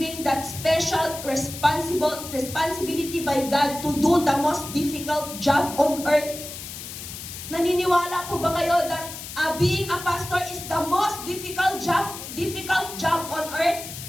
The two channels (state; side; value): noise; left; hiss, 10 dB below the sound